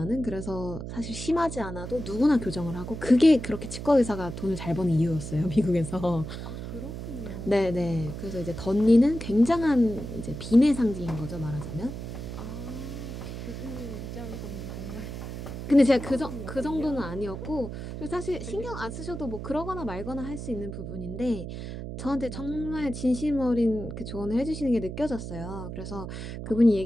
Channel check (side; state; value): right; noise; hum, 7 dB below the sound